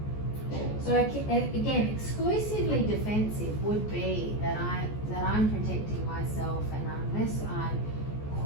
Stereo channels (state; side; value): late; right; 14 ms